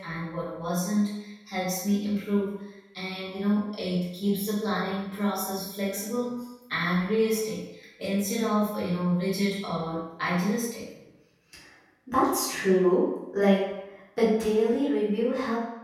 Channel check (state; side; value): identical; both; correlation 1.00